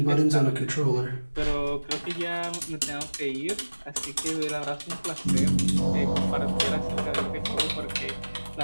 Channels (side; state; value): both; inverted; correlation -1.00